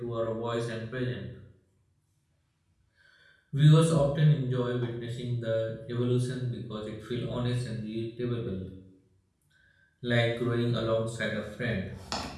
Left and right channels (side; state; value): both; identical; correlation 1.00